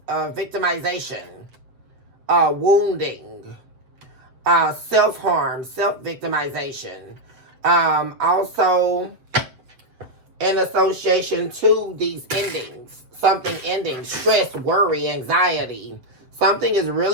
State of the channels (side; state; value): left; late; 7.7 ms